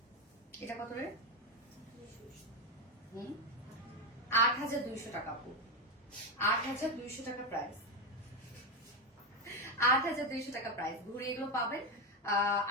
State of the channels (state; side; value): normal; both; correlation 0.10